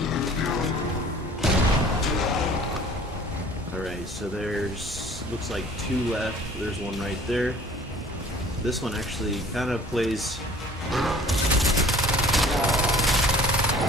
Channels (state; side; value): normal; both; correlation 0.50